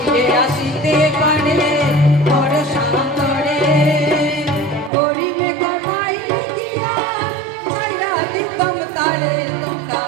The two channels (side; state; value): left; drops out; at 4.9 s